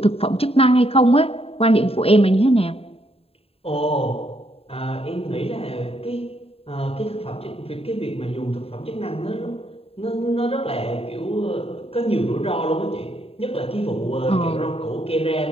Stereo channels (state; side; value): late; right; 0.28 ms